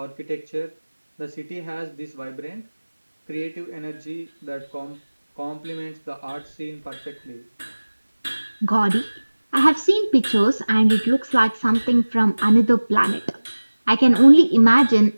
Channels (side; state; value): both; inverted; correlation -1.00